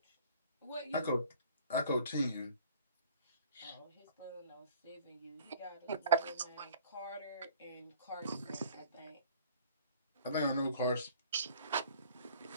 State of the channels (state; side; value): inverted; both; correlation -0.50